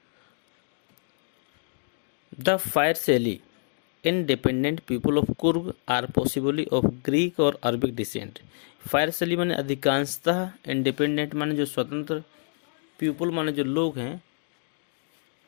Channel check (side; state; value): right; silent; 56 dB below the other